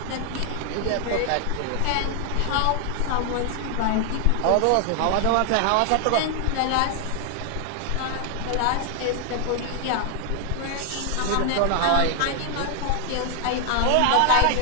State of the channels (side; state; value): both; different; correlation 0.00